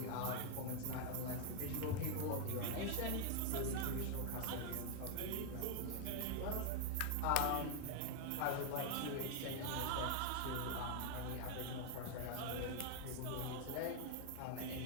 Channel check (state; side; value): different; both; correlation 0.00